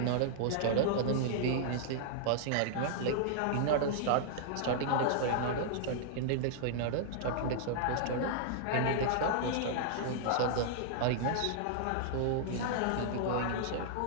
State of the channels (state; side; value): different; both; correlation -0.01